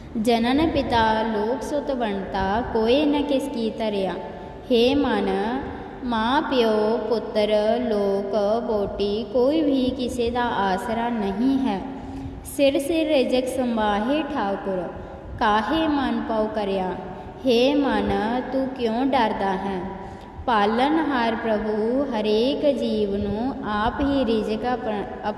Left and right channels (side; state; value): both; identical; correlation 1.00